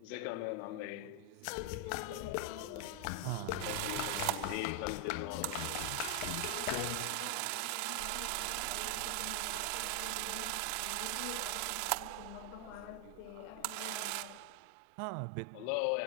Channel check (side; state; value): both; different; correlation 0.00